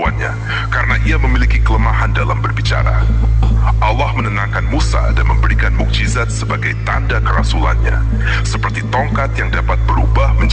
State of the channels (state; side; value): identical; both; correlation 1.00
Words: karena ia memiliki kelemahan dalam berbicara. Allah menenangkan Musa dan memberikan mukjizat sebagai tanda kerasulannya, seperti tongkat yang dapat berubah